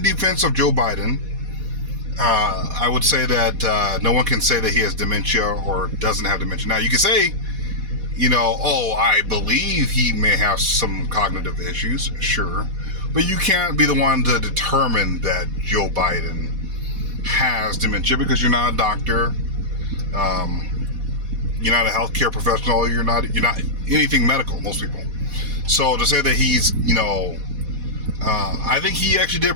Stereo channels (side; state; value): left; late; 4.1 ms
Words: defense of Joe Biden, I would say that no one can say that he has dementia or doesn't have dementia. Now, you can say, I believe he may have some cognitive issues, sure. But you can't be the one to determine that Joe Biden has dementia because you're not a doctor. You're not a healthcare professional. You're not anything medical, most people. So to say that he's, I think he actually did